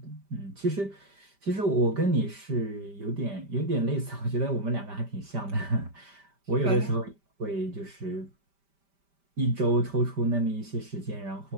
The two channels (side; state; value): left; late; 5.1 ms